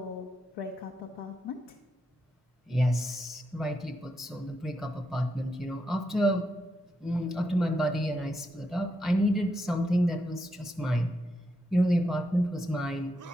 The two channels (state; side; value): normal; both; correlation 0.83